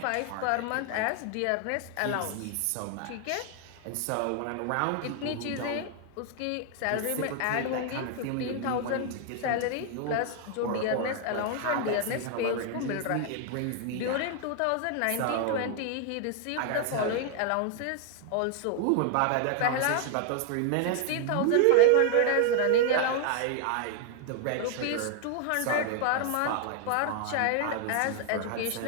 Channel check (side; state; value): both; different; correlation 0.00